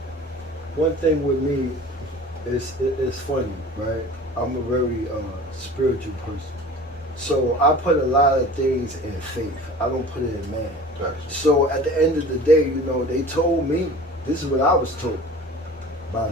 one thing with me, it's funny, right? I'm a very spiritual person. So I put a lot of things in faith. I don't put it in man. Gotcha. So at the end of the day, you know, they told me, this is what I was told by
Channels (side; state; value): both; normal; correlation 0.41